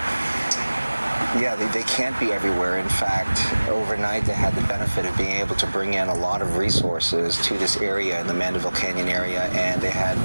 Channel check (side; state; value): both; inverted; correlation -1.00